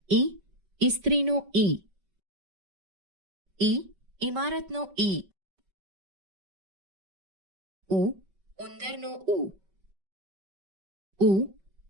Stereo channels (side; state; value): left; late; 5.2 ms